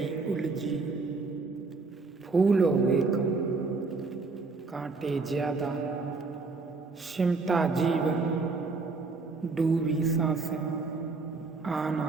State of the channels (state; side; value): quieter; left; 4.0 dB